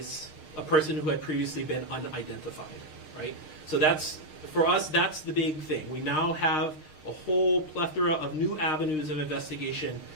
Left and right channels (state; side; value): late; right; 6.5 ms